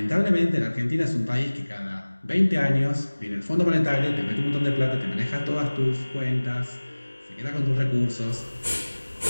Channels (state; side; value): inverted; both; correlation -1.00